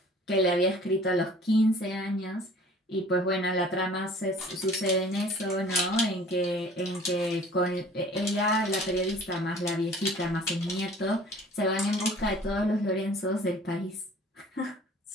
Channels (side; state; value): both; normal; correlation 0.49